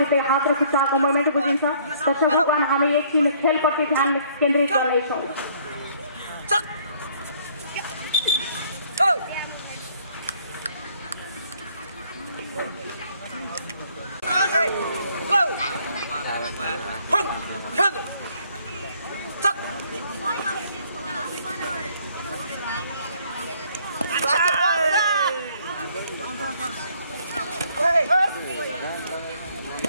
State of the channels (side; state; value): both; inverted; correlation -0.62